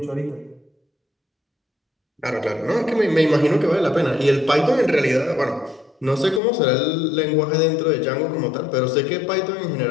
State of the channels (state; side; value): drops out; right; at 6.4 s